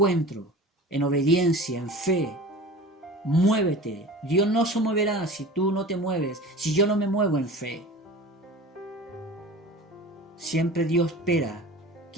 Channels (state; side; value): normal; both; correlation 0.37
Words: en obediencia, en fe. Muévete. Dios no se moverá si tú no te mueves, si yo no me muevo en fe. Siempre Dios espera